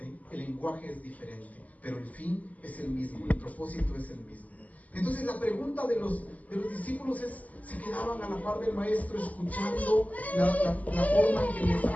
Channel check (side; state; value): right; late; 0.075 ms